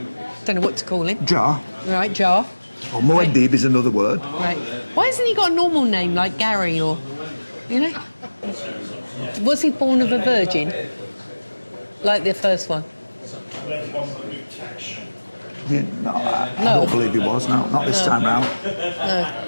Don't know what to call him. Jar. Right, Jar. Or Muad'Dib is another word. Right. Why hasn't he got a normal name like Gary or, you know? Was he born of a virgin? Like the first one? Yeah, no, I don't believe he was. No, not this time round.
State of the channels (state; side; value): inverted; both; correlation -1.00